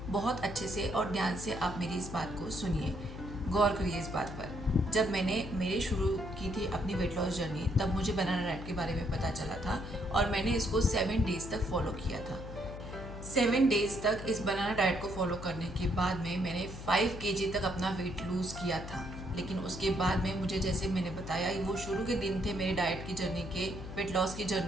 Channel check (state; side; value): noise; left; hum, 10 dB below the sound